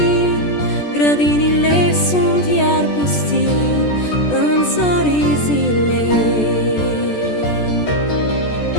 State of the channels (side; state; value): right; late; 14 ms